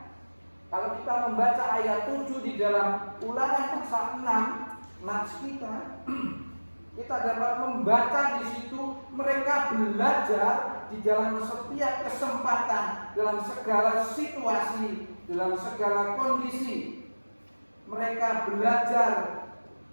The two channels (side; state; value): both; inverted; correlation -1.00